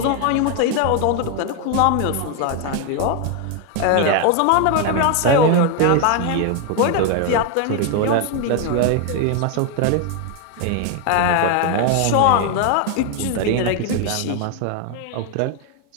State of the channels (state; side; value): different; both; correlation 0.01